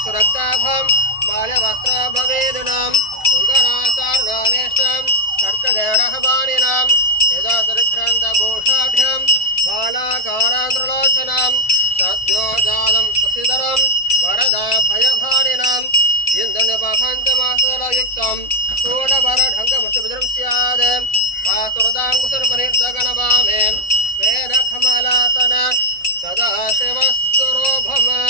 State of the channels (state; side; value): late; right; 1.5 ms